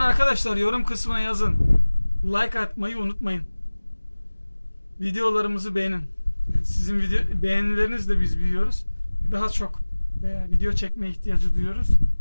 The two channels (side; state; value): both; inverted; correlation -1.00